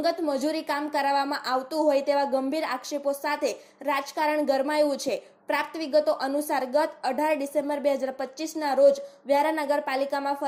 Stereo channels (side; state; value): both; identical; correlation 1.00